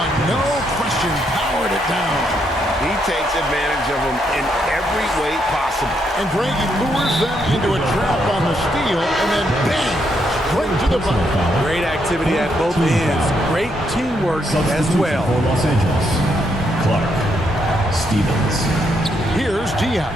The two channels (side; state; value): both; normal; correlation 0.76